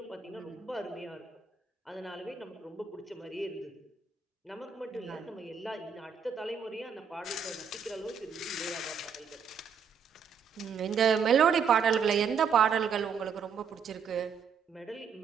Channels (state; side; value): quieter; left; 6.4 dB